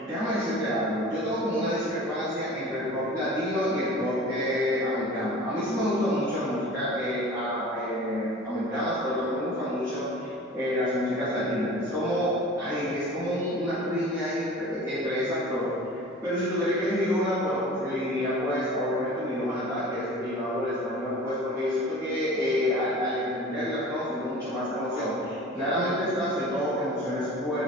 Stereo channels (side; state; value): both; normal; correlation 0.40